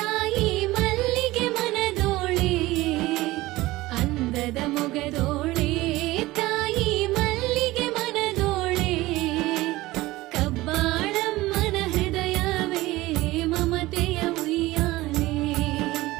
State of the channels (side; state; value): left; quieter; 18.6 dB